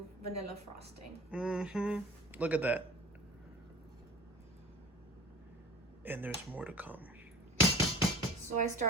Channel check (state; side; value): normal; both; correlation 0.39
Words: vanilla frosting. Mm-hmm. Look at that. And there's more to come. So I